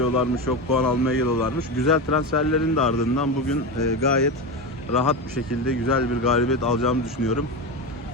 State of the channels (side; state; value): both; normal; correlation 0.18